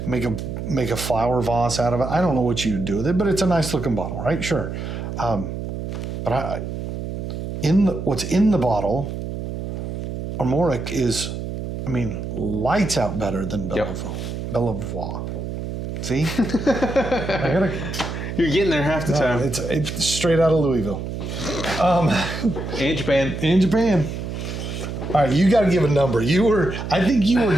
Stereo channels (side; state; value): right; noise; hum, 6 dB below the sound